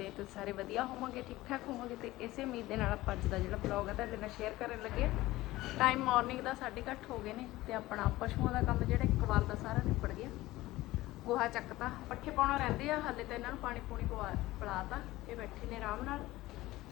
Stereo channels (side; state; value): right; quieter; 17.8 dB